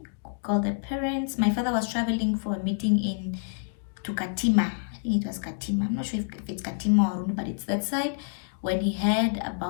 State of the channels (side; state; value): right; silent; digital silence